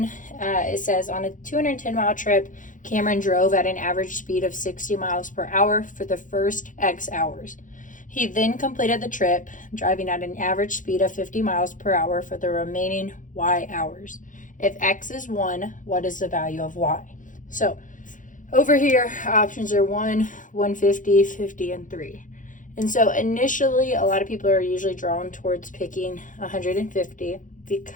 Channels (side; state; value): right; late; 0.38 ms